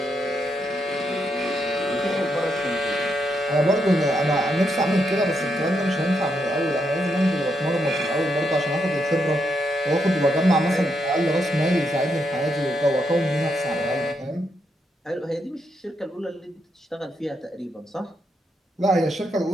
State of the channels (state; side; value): normal; both; correlation 0.80